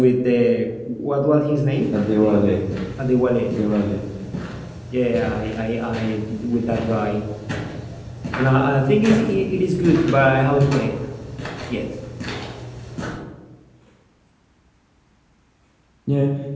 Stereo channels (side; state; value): both; identical; correlation 1.00